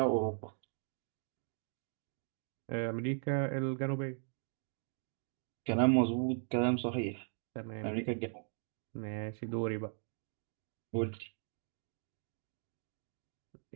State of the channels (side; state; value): left; silent; 52 dB below the other